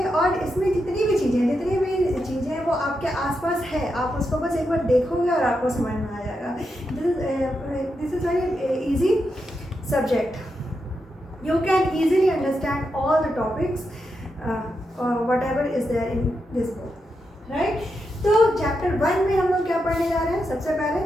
और इसमें जितनी भी चीज़ें हैं वो आपके आसपास है, आप उसको बस एक बार देखोगे और आपको समझ में आ जाएगा। This is very easy subject. You can easily understand all the topics whatever is there in this book, right? तो चैप्टर 1 में हम लोग क्या पढ़ने जा रहे हैं? सबसे पहले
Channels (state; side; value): normal; both; correlation 0.85